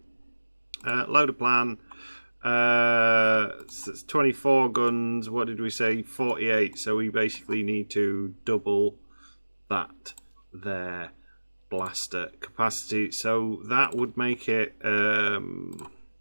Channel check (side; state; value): both; inverted; correlation -1.00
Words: Load a plan. It's 24 guns. What did we say? 48. So we basically need to double that there blaster capacity. So that would make it